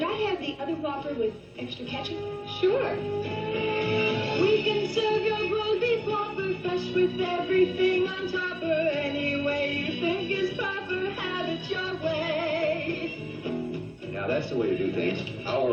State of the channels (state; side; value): identical; both; correlation 1.00